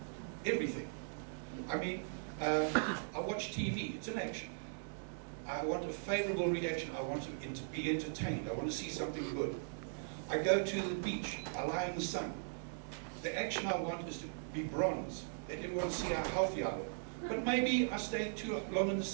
Everything. I mean, I watch TV, it's an action. I want a favorable reaction. I want to be entertained. I want to see something good. I go to the beach. I lie in the sun. The action I want is to be bronze. Let everyone see how healthy I look. But maybe I stay too long in the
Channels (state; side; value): silent; left; digital silence